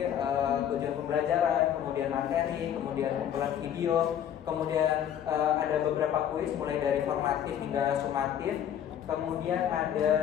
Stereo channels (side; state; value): right; quieter; 9.8 dB